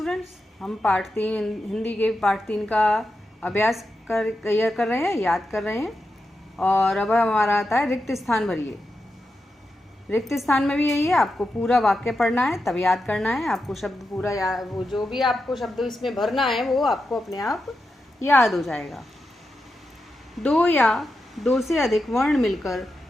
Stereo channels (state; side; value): normal; both; correlation 0.88